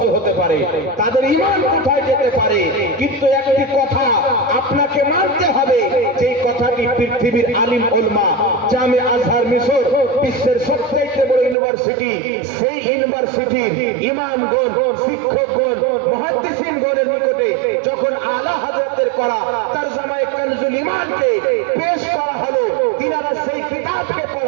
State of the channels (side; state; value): left; drops out; at 11.6 s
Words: হতে পারে, তাদের ঈমান কোথায় যেতে পারে। কিন্তু একটি কথা আপনাকে মানতে হবে, যে কথাটি পৃথিবীর আলিম উলামা, জামে আজহার মিশর বিশ্বের সবচেয়ে বড় ইউনিভার্সিটি, সেই ইউনিভার্সিটির ইমামগণ, শিক্ষকগণ, মুহাদ্দিসিনগণের নিকটে যখন আলা হযরতের করা তরজমায়ে কানজুল ঈমানকে পেশ করা হলো, তিনারা সেই কিতাবকে